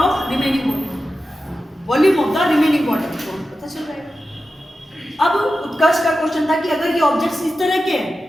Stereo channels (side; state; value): both; normal; correlation 0.92